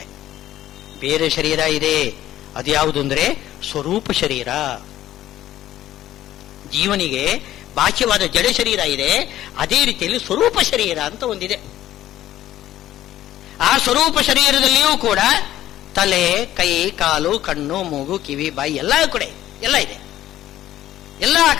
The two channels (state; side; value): quieter; right; 13.4 dB